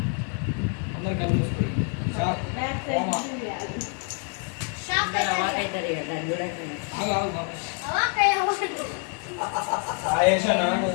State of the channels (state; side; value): quieter; right; 39.9 dB